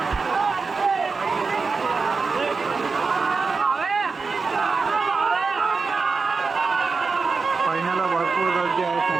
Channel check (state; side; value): quieter; left; 4.5 dB